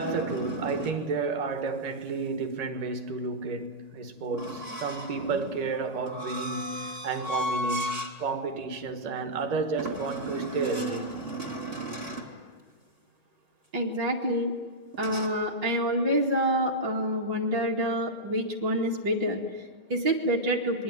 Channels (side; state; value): left; late; 1.8 ms